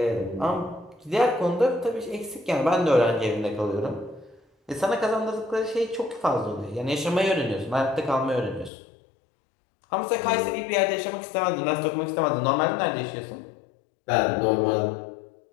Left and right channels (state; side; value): drops out; right; at 8.7 s